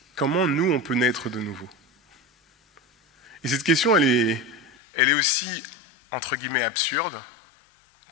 comment nous on peut naître de nouveau? Et cette question, elle est aussi, entre guillemets, absurde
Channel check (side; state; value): right; drops out; at 4.7 s